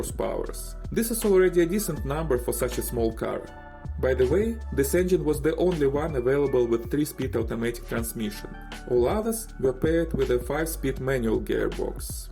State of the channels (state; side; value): identical; both; correlation 1.00